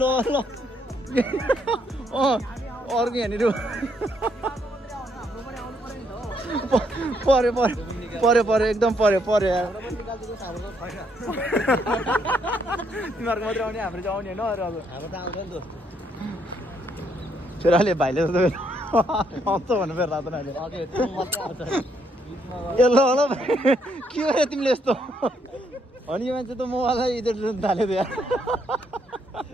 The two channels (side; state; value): both; normal; correlation 0.73